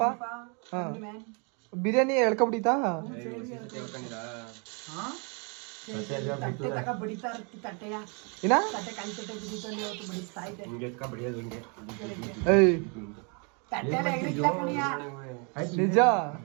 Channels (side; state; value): left; quieter; 35.5 dB